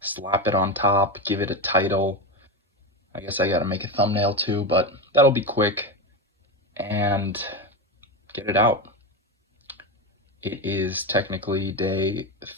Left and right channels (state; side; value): normal; both; correlation 0.17